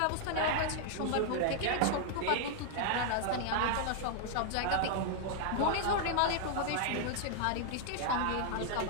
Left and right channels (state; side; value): different; both; correlation 0.00